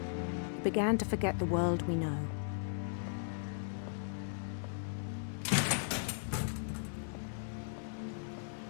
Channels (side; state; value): right; silent; digital silence